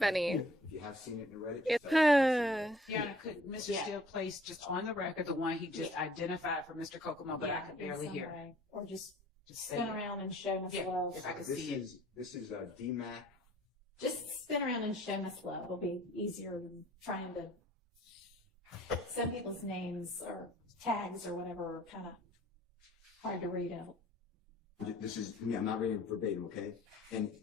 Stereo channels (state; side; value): normal; both; correlation 0.55